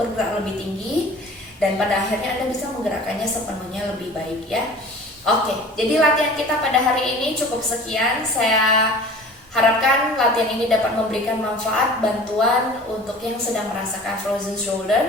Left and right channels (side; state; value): both; normal; correlation 0.43